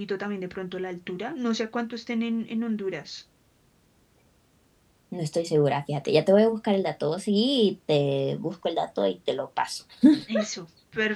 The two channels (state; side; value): identical; both; correlation 1.00